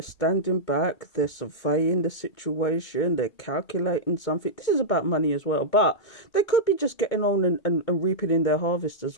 standing back, they're surveying the situation, they're calculating something. This is about money as well, but they could be just getting on and reaping in their harvest as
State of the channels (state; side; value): late; right; 2.2 ms